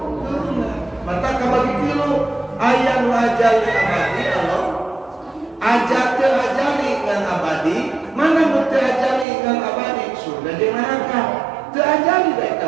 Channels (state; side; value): drops out; left; at 9.2 s